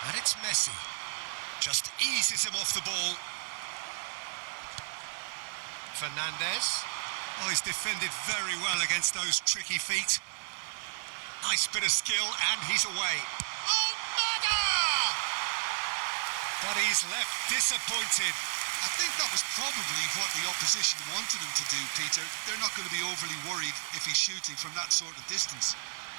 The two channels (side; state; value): left; silent; digital silence